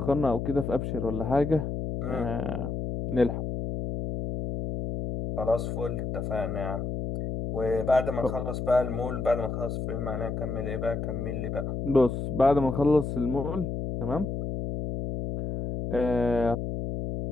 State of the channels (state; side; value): noise; left; hum, 3 dB below the sound